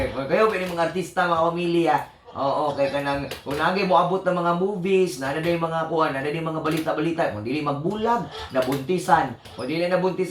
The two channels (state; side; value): identical; both; correlation 1.00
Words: Kayo yung mga artista, mga pamilya. Kaya kanang unagi mo abot ng mga movies, na yung mga kuha, na yung mga balita-balita, kung dili magbulag, nabuntisan. Kung dili